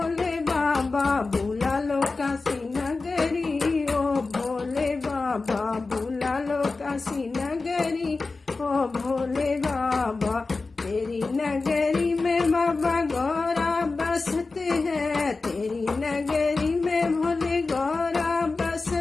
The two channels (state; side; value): quieter; right; 3.8 dB